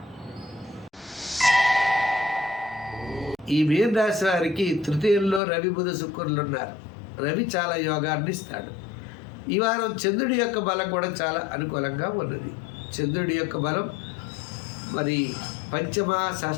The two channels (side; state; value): right; drops out; at 5.4 s